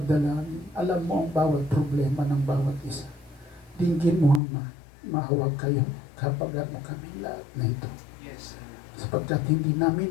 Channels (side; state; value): right; drops out; at 4.4 s